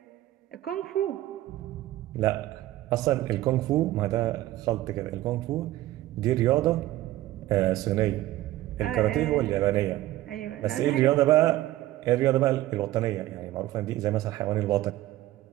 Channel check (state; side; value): quieter; left; 15.6 dB